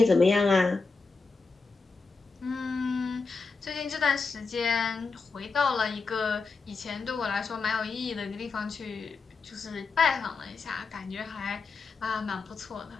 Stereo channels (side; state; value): right; quieter; 4.4 dB